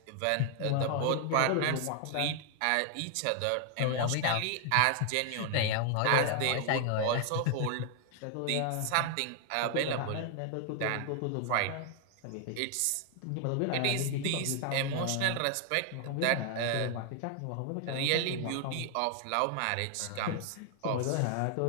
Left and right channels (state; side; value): different; both; correlation 0.00